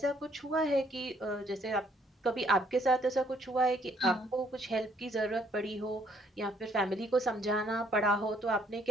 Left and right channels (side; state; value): both; normal; correlation 0.66